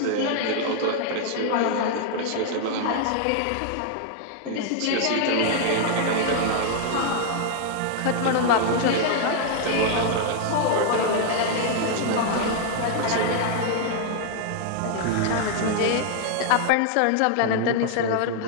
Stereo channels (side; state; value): both; different; correlation 0.00